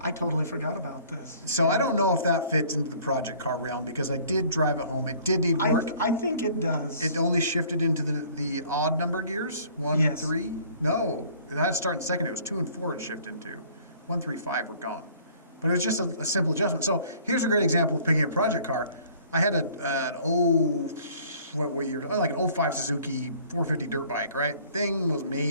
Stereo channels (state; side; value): inverted; both; correlation -0.54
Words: totally forgot about this. So I don't know if that fits into the project car realm because I did drive it home. It did need work. I think it does. It only shifted into the odd number gears, 1 and 3. No, it had to start in second. It was 2 and 4 it shifted into. 1, 3, 5 were gone. But it was just a simple adjustment. So here's a great example of picking a project car. I had like an 05 Suzuki 450 dirt bike, right? Thing was